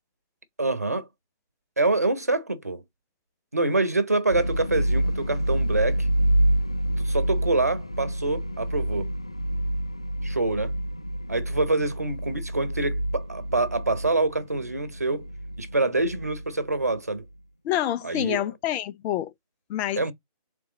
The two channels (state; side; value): inverted; both; correlation -0.70